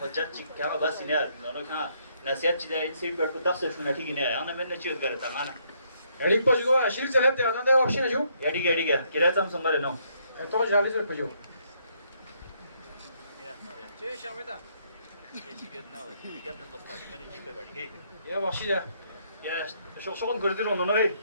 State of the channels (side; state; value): both; inverted; correlation -0.71